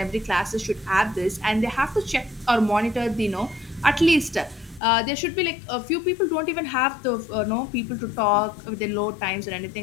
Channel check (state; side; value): drops out; right; at 4.8 s